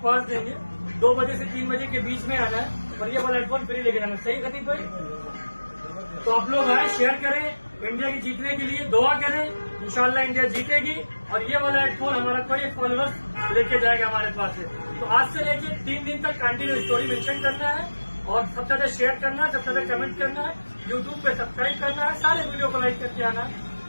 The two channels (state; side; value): inverted; both; correlation -1.00